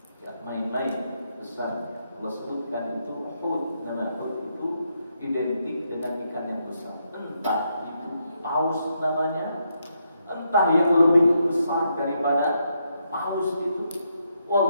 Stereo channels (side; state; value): both; inverted; correlation -0.79